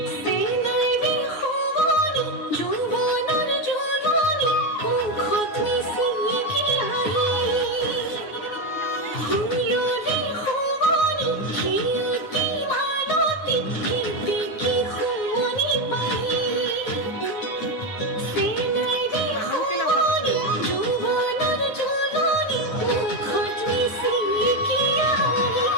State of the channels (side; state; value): right; late; 9.6 ms